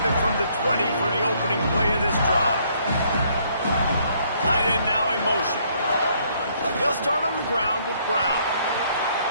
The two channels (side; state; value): both; inverted; correlation -0.67